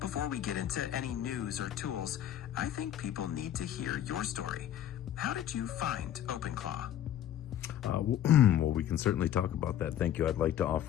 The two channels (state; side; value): quieter; right; 11.1 dB